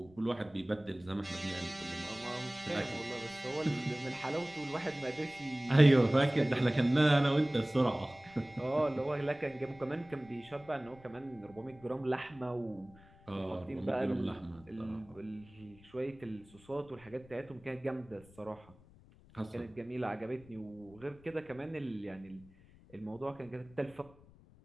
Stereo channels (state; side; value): noise; left; rumble, 24 dB below the sound